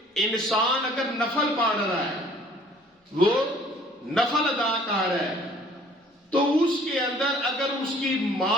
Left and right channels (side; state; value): both; normal; correlation 0.55